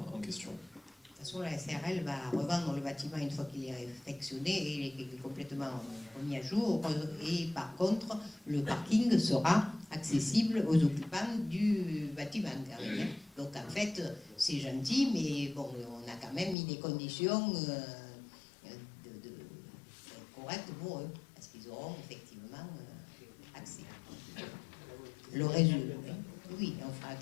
en question. De toute façon, la SARL va revendre le bâtiment une fois qu'il est réfectionné et il est complètement remis à jour. Et par contre, le parking sera accessible aux occupants du bâtiment. Donc en fait, c'est gentil, mais bon, on a quand même mis des conditions correctes pour eux, parce qu'ils auront effectivement accès. Le résultat, oui, on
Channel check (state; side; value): drops out; right; at 16.6 s